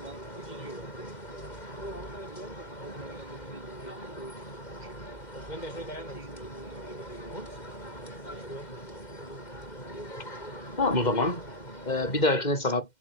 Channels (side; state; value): right; late; 2.1 ms